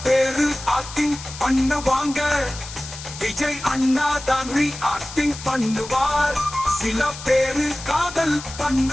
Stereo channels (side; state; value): left; noise; hiss, 13 dB below the sound